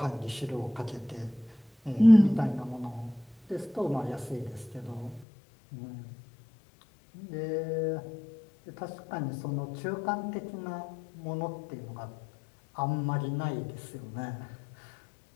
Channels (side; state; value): right; drops out; at 5.2 s